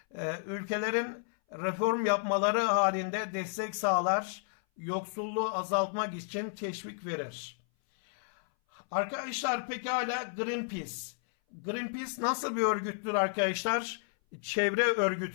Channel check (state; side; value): silent; right; 56 dB below the other